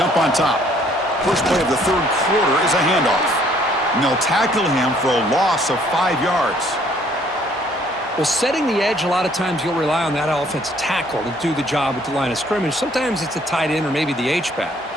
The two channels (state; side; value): normal; both; correlation 0.62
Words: on top. First play of the third quarter is a handoff. And they'll tackle him for a loss of 5 yards. Well, setting the edge, a lot of times you'll rely on that offensive tackle to do the job at the line of scrimmage. Sometimes it's a tight end or maybe the H-back.